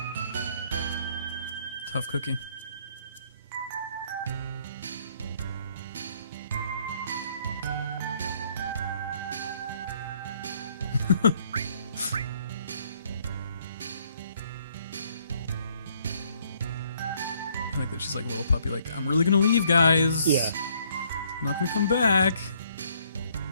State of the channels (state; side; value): inverted; both; correlation -0.66